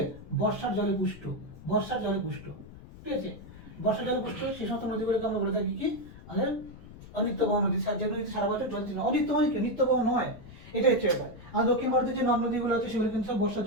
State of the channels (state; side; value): noise; left; rumble, 17 dB below the sound